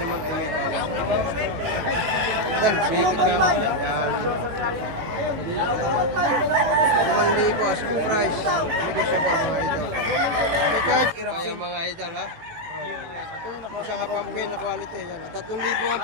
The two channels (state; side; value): late; left; 18 ms